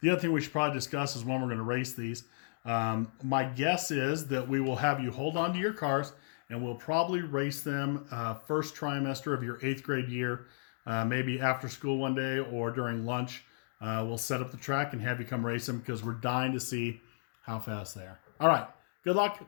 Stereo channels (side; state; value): right; silent; digital silence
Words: The other thing we should probably discuss is when we're going to race these. My guess is that we will have you hold on to your cars, and we'll probably race them first trimester of your 8th grade year, maybe after school one day or during lunch. We'll set up the track and have you come race them, because we're dying to see how fast they are. All right, good